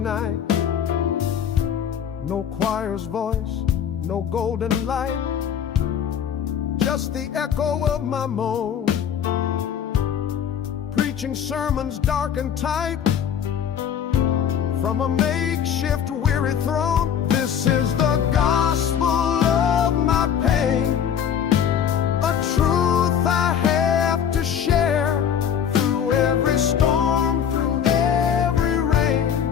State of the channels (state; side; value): quieter; right; 8.5 dB